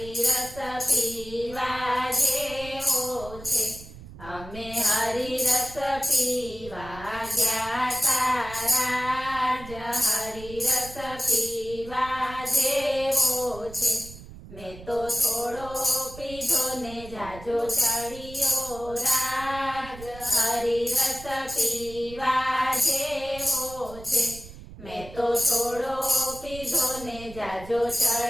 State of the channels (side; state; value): right; noise; rumble, 15 dB below the sound